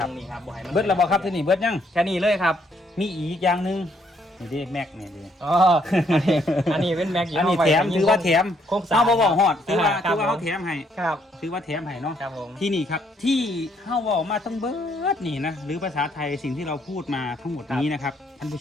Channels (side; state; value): both; normal; correlation 0.69